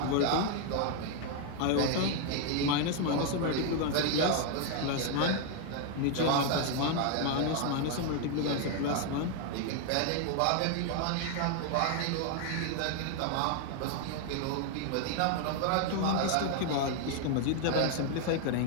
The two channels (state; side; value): different; both; correlation 0.00